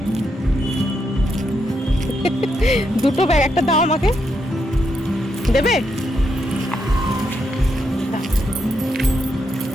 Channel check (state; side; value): normal; both; correlation 0.80